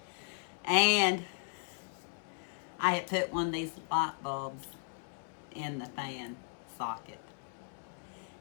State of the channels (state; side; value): silent; right; 54 dB below the other